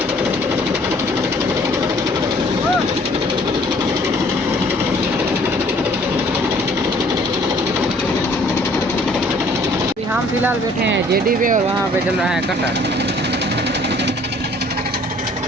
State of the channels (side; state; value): both; normal; correlation 0.57